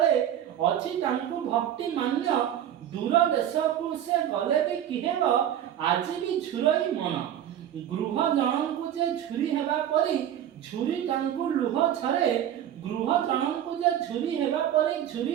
अच्छी तांकु भक्ति मान्य दूर देश को से गले भी किहेब आज भी झुरई मन गृह जन को जे झुरी हेबा परी झुरी तांकु लुह छरे गृह जन को जे झुरी हेबा परी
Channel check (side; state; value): left; quieter; 10.7 dB